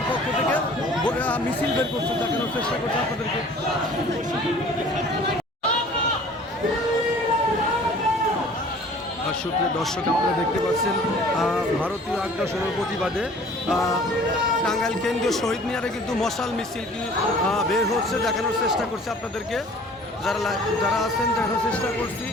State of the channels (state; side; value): normal; both; correlation 0.49